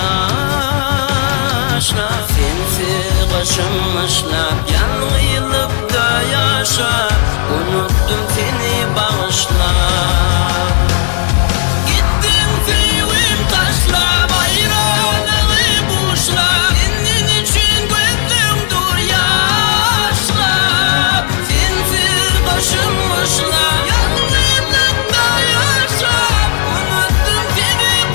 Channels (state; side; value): silent; right; 55 dB below the other